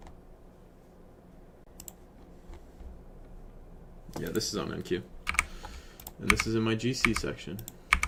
Yeah, this is on NQ. And this is in my GC section.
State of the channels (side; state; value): both; identical; correlation 1.00